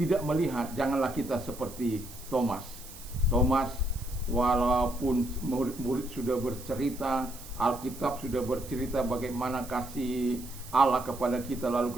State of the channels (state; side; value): noise; right; hiss, 16 dB below the sound